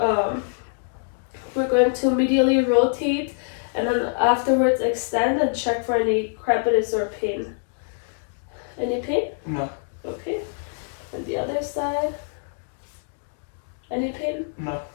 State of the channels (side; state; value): right; silent; digital silence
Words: we're going to medially rotate, and then afterwards extend and check for any crepitus or pain. Any pain? No. Okay. And the other side? Any pain? No.